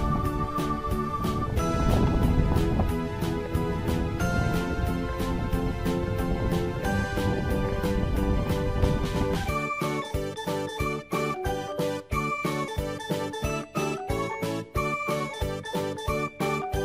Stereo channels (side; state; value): both; identical; correlation 1.00